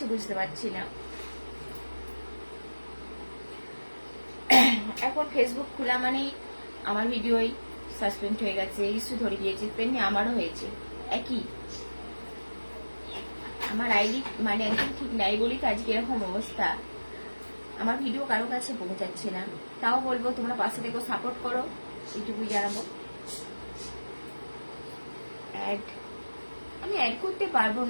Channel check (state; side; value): inverted; both; correlation -1.00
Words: বুঝতে পারছি না। এখন ফেসবুক খোলা মানেই আমার ভিডিওই সাসপেন্ড হয়ে গেছে, ইস্যু ধরে দিয়েছে, তেমনি আমারও হয়েছে একই। আমার আইডি মানে একদম ঠিক নাই বলি তো আজকে এরকম অবস্থা। আমার ভিডিও কারো কাছে পৌঁছাচ্ছে না, তাও বলবো তোমরা পাশে থেকে সাপোর্ট করো, এইটুকুই জানাবো। আমি অ্যাড করতে পারবো